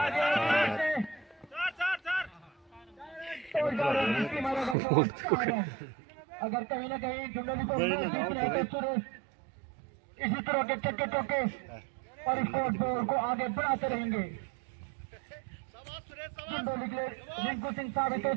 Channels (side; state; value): left; drops out; at 4.8 s